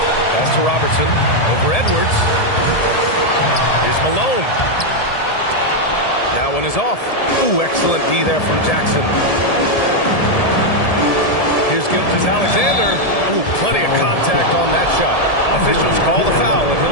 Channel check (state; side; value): late; right; 1.7 ms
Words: Pass to Robertson. Over Edwards. Here's Malone. That one is off. Ooh, excellent D there from Jackson. Here's Gilgeous-Alexander. Ooh, plenty of contact on that shot. Officials call the foul, and